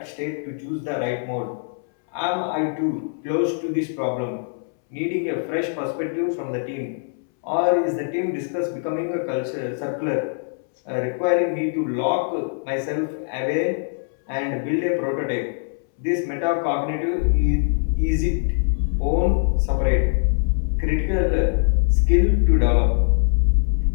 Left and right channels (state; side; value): silent; right; 64 dB below the other